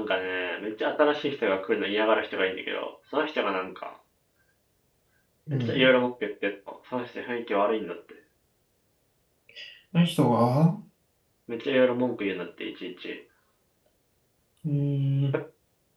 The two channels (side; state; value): both; identical; correlation 1.00